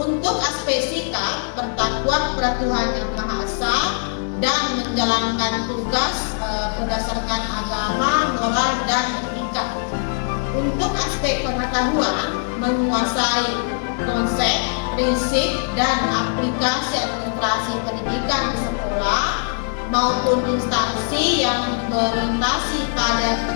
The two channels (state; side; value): silent; right; 58 dB below the other